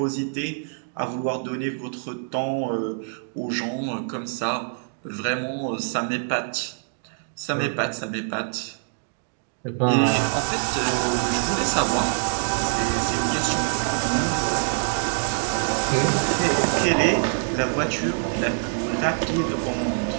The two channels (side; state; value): left; silent; digital silence